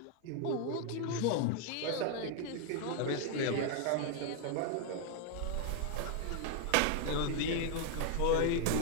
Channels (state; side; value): different; both; correlation 0.00